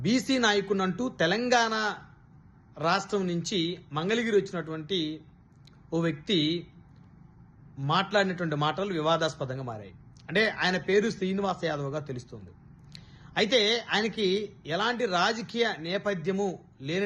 బీసీ నాయకునంటూ తెలంగాణ రాష్ట్రం నుంచి మంగళగిరి వచ్చినటువంటి ఓ వ్యక్తి మాట్లాడినటువంటి మాటలు వివాదాస్పదంగా మారాయి. అంటే ఆయన పేరు శ్రీనివాస్ యాదవ్గా తెలుస్తుంది. అయితే ఆయనకి ఎలాంటి రాజకీయ నేపథ్యము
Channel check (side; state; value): both; identical; correlation 1.00